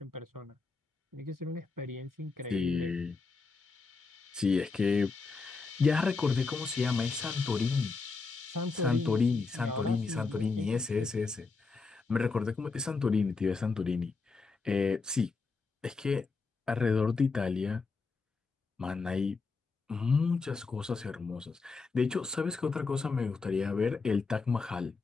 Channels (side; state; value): right; quieter; 4.3 dB